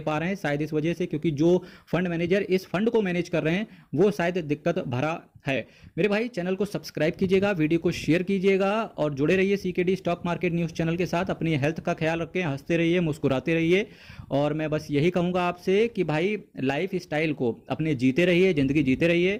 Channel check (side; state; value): both; identical; correlation 1.00